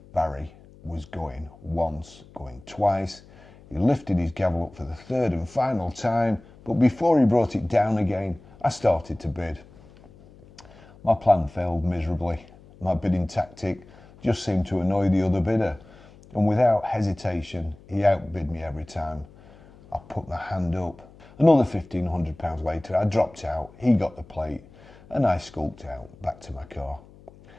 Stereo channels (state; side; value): noise; left; hum, 23 dB below the sound